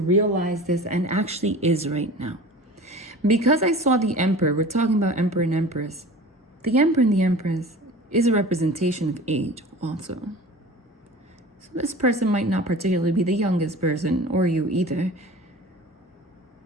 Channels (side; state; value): both; normal; correlation 0.39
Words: this, and actually is right now. Because I saw the emperor, we're talking about emperor and empress. The emperor and the empress is a representation of age also. So this person might not particularly be the youngest person, or you either,